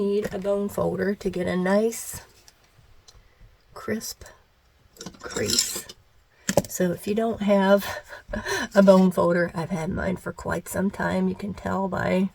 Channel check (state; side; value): identical; both; correlation 1.00